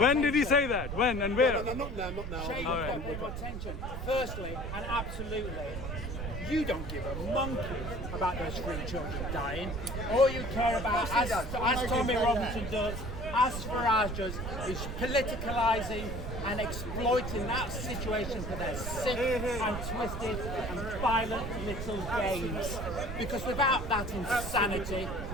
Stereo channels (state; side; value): noise; right; rumble, 6 dB below the sound